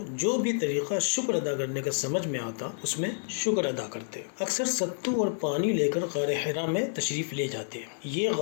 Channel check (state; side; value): silent; right; digital silence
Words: جو بھی طریقہ شکر ادا کرنے کا سمجھ میں آتا اس میں شکر ادا کرتے۔ اکثر ستو اور پانی لے کر غار حرا میں تشریف لے جاتے۔ یہ